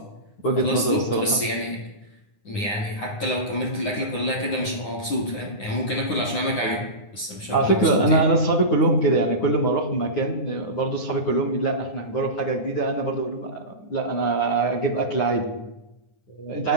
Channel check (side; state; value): right; late; 9.8 ms